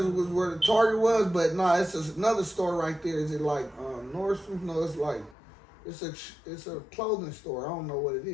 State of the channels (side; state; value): right; drops out; at 5.4 s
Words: was where the Target was, but nah, it's another store right there. Is it like Nordstrom? No, it's like it's a clothing store. I don't know what it